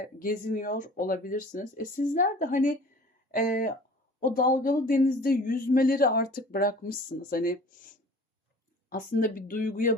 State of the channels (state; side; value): normal; both; correlation 0.46